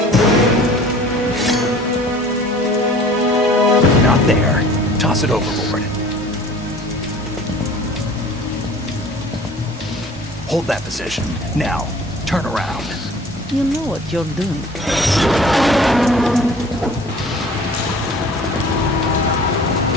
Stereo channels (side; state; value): both; normal; correlation 0.47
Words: Not there. Toss it overboard. Hold that position. Now, turn around. You know what you're doing.